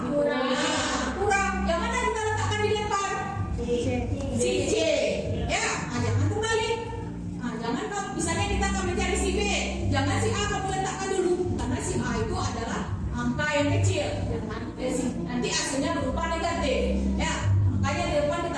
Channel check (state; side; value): identical; both; correlation 1.00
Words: kurang. Yang mana kita letakkan di depan? Si C. Ya, jangan terbalik. Jangan kalau misalnya kita akan mencari si B, jangan si A kamu letakkan dulu, karena si A itu adalah angka yang kecil. Jangan nanti hasilnya berupa negatif. Ya, makanya di depan